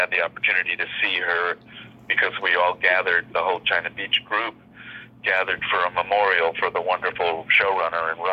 the opportunity to see her because we all gathered, the whole China Beach group gathered for a memorial for the wonderful showrunner and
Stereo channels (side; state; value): both; identical; correlation 1.00